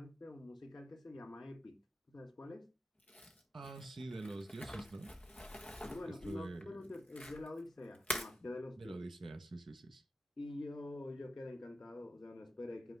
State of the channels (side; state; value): both; normal; correlation 0.89